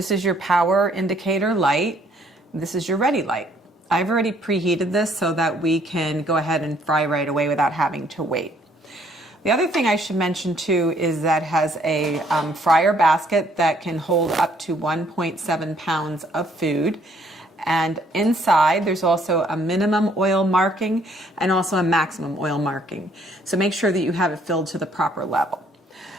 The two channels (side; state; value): both; normal; correlation 0.65